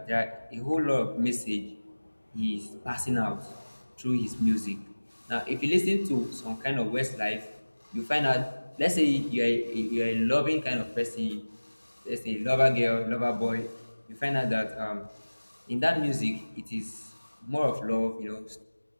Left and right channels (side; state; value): both; inverted; correlation -1.00